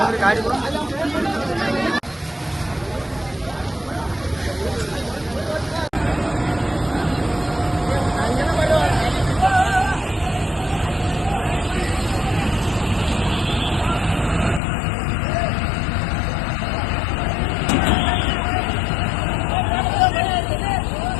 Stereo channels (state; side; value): drops out; right; at 14.6 s